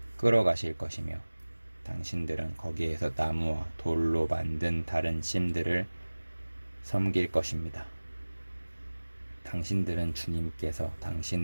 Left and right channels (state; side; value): inverted; both; correlation -1.00